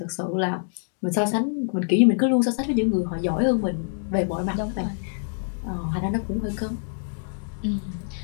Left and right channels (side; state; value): right; silent; digital silence